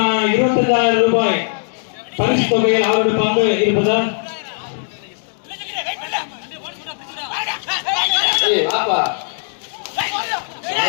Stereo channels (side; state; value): right; silent; digital silence